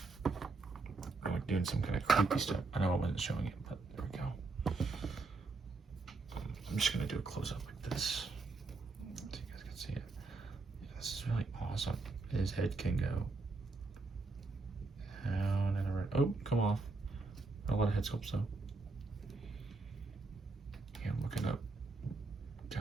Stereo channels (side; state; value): left; quieter; 3.8 dB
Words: I'm like doing some kind of creepy stuff. I know I wasn't showing it, but there we go. I'm just going to do a close-up like this. So you guys can see it. Yeah, this is really awesome. His head can go down and around. Oh, come off. Not a lot of head sculpts, though. Yeah, I'm looking up.